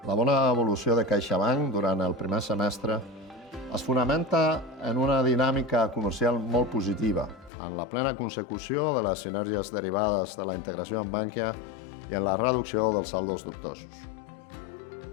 La bona evolució de CaixaBank durant el primer semestre es fonamenta en una dinàmica comercial molt positiva, en la plena consecució de les sinergies derivades de la integració amb Bankia i en la reducció dels saldos dubtosos.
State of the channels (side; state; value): right; drops out; at 7.5 s